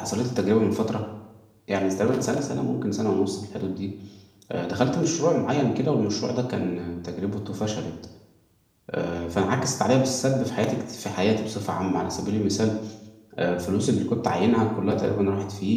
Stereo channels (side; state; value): both; identical; correlation 1.00